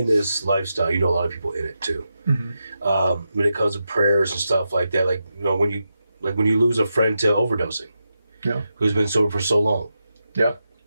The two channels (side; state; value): both; inverted; correlation -0.88